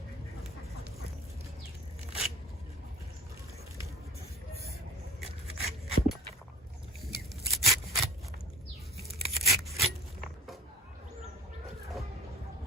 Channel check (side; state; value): both; normal; correlation 0.40